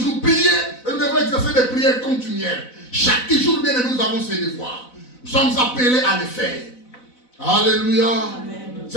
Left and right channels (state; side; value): late; right; 4.0 ms